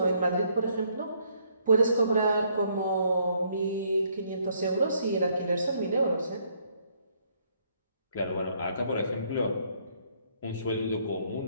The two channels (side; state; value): both; inverted; correlation -0.68